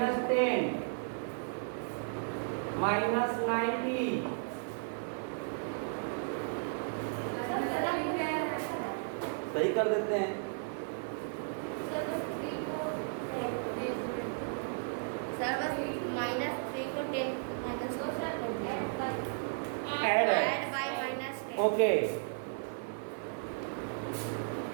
-90 सही कर देते हैं। सर बस -3 को 10 add by -10। Okay,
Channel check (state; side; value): silent; left; digital silence